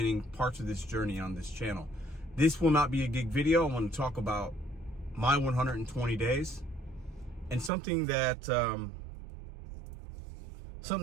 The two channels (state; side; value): drops out; left; at 7.7 s